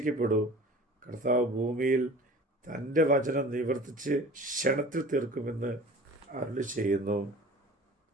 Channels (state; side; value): normal; both; correlation 0.42